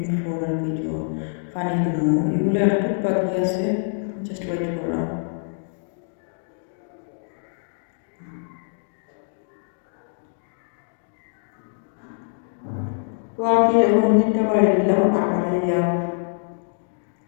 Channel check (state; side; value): silent; right; digital silence